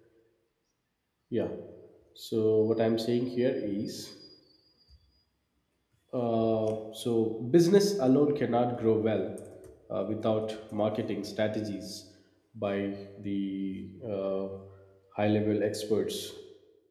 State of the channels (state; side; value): identical; both; correlation 1.00